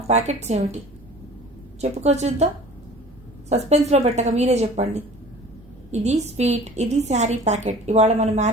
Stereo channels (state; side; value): noise; right; rumble, 25 dB below the sound